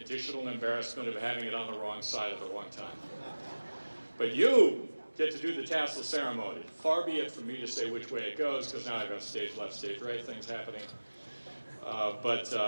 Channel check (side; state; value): both; inverted; correlation -1.00